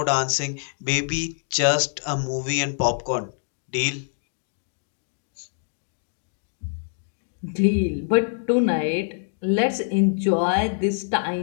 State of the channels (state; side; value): silent; right; digital silence